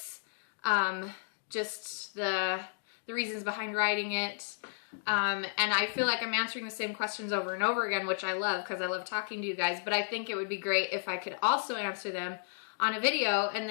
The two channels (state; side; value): silent; right; digital silence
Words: just the reasons behind writing it, and I feel like I'm answering the same questions over and over again, which I love because I love talking to you guys, but I think it would be great if I could also answer them on a video, and